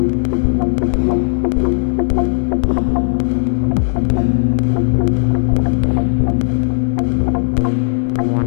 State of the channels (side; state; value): right; silent; 66 dB below the other